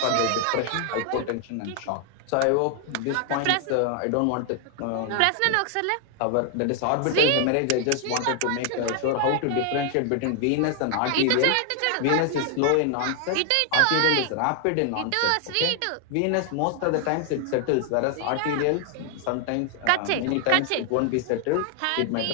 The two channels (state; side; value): different; both; correlation 0.00